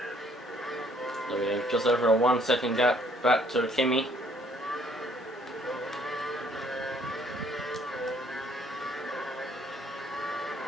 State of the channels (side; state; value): both; normal; correlation 0.62